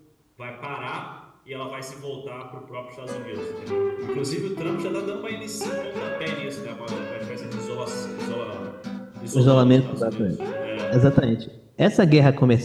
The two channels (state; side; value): identical; both; correlation 1.00